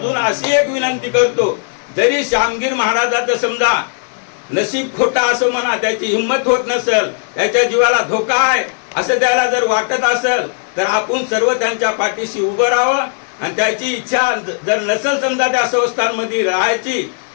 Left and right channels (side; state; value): right; silent; 58 dB below the other